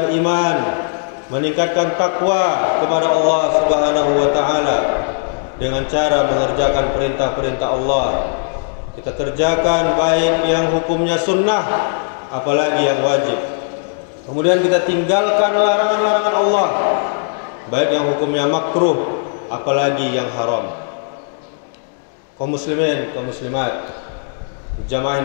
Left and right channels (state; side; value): silent; right; digital silence